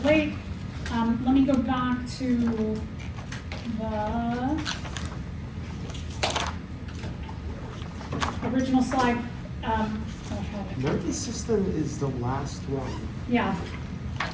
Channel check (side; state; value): both; identical; correlation 1.00